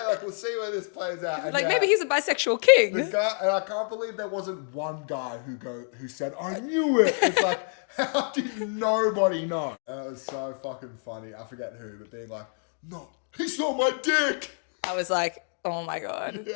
we'll see where this plays out. And like maybe he's a bisexual king. the guy, and I can't believe there wasn't one guy who said, I knew it. It's like, how did nobody know? And it was so fucking funny. I forget who, but being like, no, he saw my dick. I was like, oh my God.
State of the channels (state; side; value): silent; right; 60 dB below the other